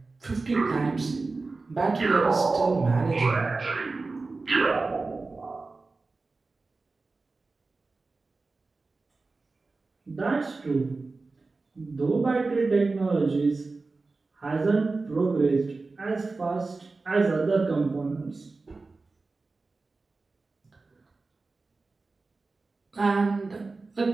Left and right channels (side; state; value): left; quieter; 3.7 dB